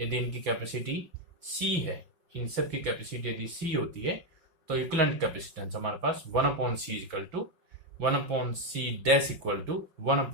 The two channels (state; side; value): late; left; 6.0 ms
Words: इनकी कैपेसिटी C है, इन सब की कैपेसिटी यदि C होती है तो इक्विवेलेंट कैपेसिटेंस हमारे पास 1/C = 1/C dash equal to